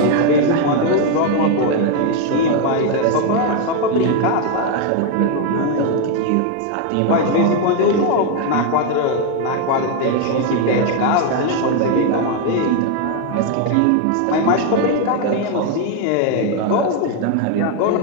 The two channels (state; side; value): different; both; correlation 0.01